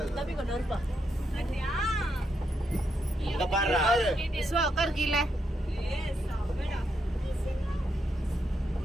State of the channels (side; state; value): both; normal; correlation 0.81